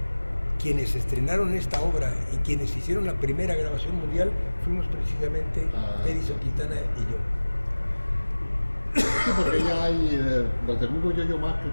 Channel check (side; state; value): both; inverted; correlation -1.00